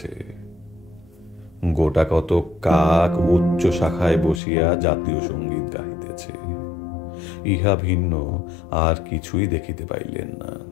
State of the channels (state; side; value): drops out; right; at 4.4 s